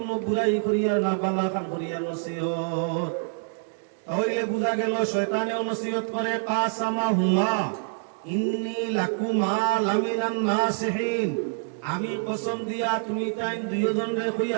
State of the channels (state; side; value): silent; left; digital silence